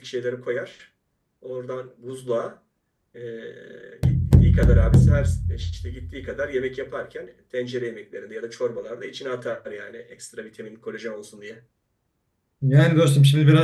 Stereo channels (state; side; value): identical; both; correlation 1.00